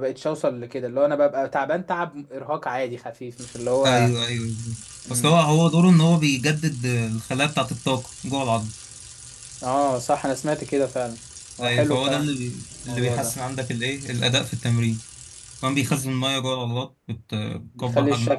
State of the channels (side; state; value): both; identical; correlation 1.00